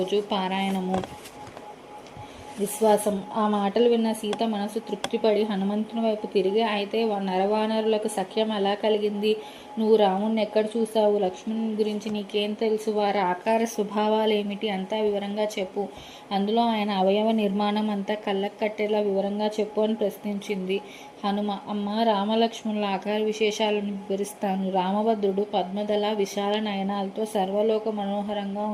పారాయణము. విశ్వాసం. ఆ మాటలు విన్న సీత మనసు తృప్తిపడి హనుమంతుని వైపు తిరిగి, అయితే నరవానరులకు సఖ్యం ఎలా కలిగింది? నువ్వు రాముణ్ణి ఎక్కడ చూశావు? లక్ష్మణుని గురించి నీకేం తెలుసు? వారి ఆకార స్వభావాలేమిటి? అంతా వివరంగా చెప్పు. అందులో ఆయన అవయవ నిర్మాణం అంతా కళ్ళకు కట్టేలా వివరంగా చెప్పు అని ప్రశ్నించింది హనుమ. అమ్మ, రామలక్ష్మణుల ఆకార విశేషాలను వివరిస్తాను. రామభద్రుడు పద్మదళ విశాల నయనాలతో సర్వలోక మనోహరంగా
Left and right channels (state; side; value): identical; both; correlation 1.00